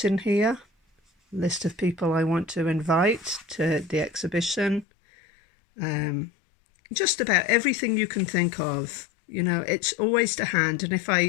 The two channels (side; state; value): right; drops out; at 4.9 s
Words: in here, list of people I want to invite to the exhibition. Just about everything you can think of. You know, it's always to hand. And